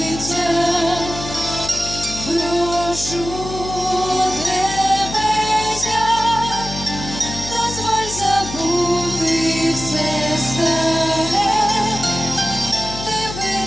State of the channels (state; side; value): noise; left; hum, 9 dB below the sound